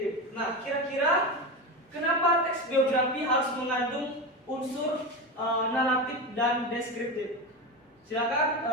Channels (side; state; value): both; normal; correlation 0.20